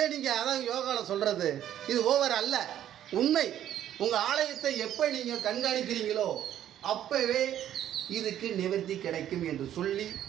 நீங்கள் அதான் யோகாவில் சொல்கிறது இது ஓவர் அல்ல, உண்மை. உங்கள் ஆலயத்தை எப்போ நீங்கள் கண்காணிக்கிறீங்களோ அப்போவே இதுக்கு நிவர்த்தி கிடைக்கும் என்று சொல்லி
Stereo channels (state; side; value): quieter; left; 11.2 dB